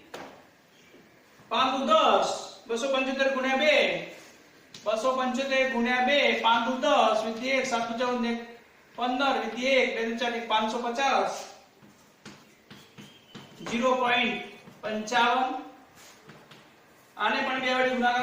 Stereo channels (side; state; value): both; identical; correlation 1.00